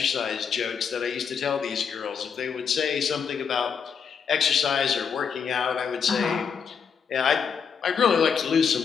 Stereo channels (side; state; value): right; quieter; 6.6 dB